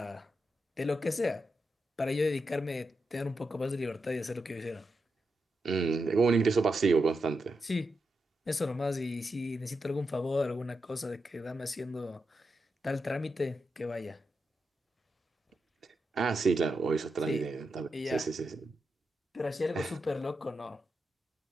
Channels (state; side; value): normal; both; correlation 0.86